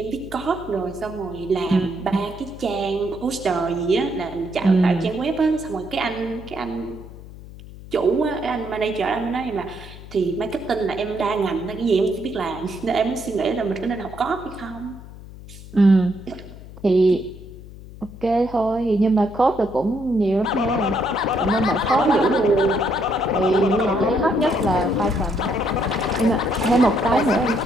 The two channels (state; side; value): noise; left; hum, 16 dB below the sound